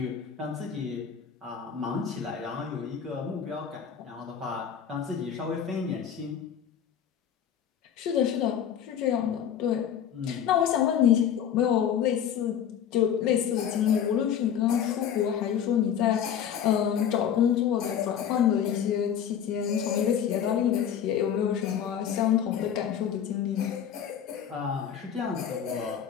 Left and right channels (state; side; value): quieter; right; 8.8 dB